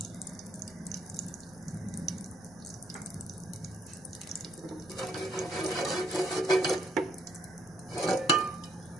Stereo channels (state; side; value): noise; right; rumble, 26 dB below the sound